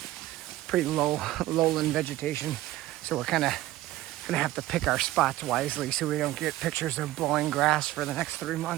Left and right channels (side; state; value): left; quieter; 16.1 dB